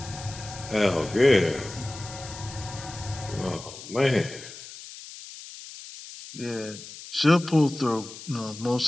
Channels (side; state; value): left; noise; hiss, 14 dB below the sound